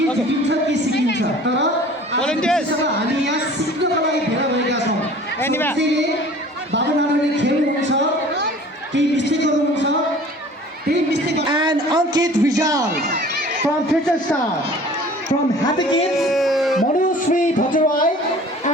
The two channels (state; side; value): normal; both; correlation 0.46